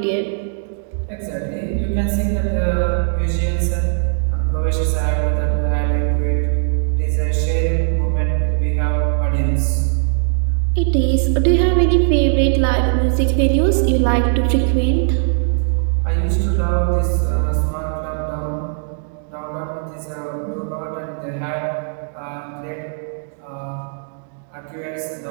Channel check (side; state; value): left; silent; digital silence